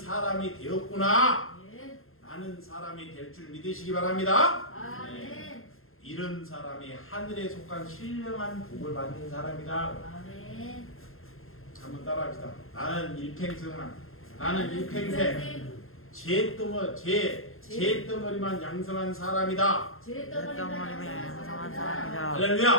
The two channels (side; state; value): right; late; 0.61 ms